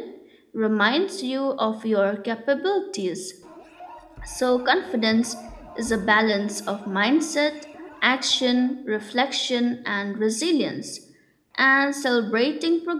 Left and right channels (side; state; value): both; identical; correlation 1.00